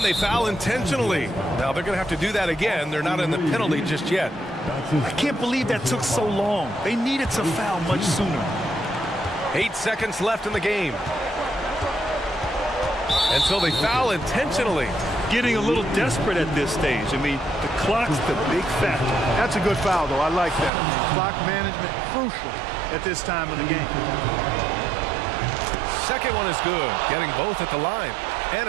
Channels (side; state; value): left; drops out; at 20.7 s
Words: they foul intentionally. Now they're going to have to do that again. They're not in the penalty just yet. I can't believe that took so long. They needed to foul much sooner. 8 seconds left in the game. And so they foul intentionally. Getting a little desperate at this stage. I mean, the clock's the big factor. That's a good foul, though. I like that. I mean, clock management crucial at this time of the game. Second one is good, getting both at the line. And